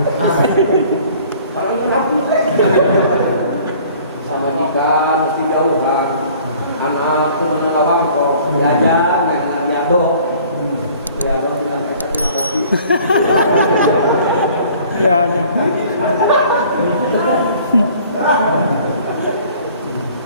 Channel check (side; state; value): both; inverted; correlation -0.52